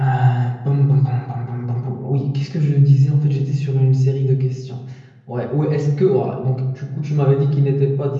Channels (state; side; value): identical; both; correlation 1.00